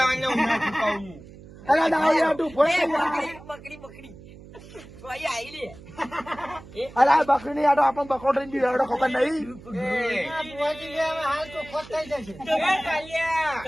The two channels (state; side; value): noise; right; hum, 18 dB below the sound